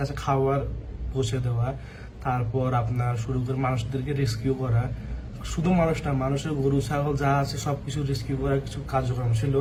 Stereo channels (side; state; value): both; identical; correlation 1.00